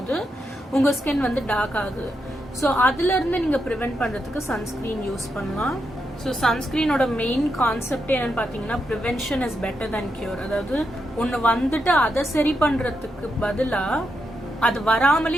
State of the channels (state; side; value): normal; both; correlation 0.83